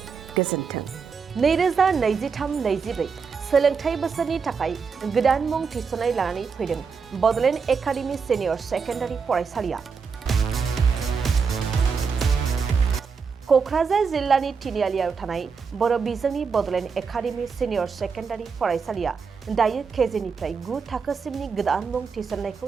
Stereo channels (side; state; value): left; quieter; 5.6 dB